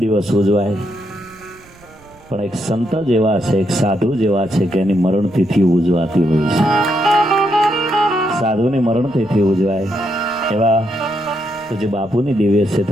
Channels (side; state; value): right; noise; rumble, 26 dB below the sound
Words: ઉજવાય પણ એક સંત જેવા છે એક સાધુ જેવા છે કે એની મરણ તિથિ ઉજવાતી હોય છે સાધુની મરણ તિથિ ઉજવાય એવા પૂજ્ય બાપુની દિવ્ય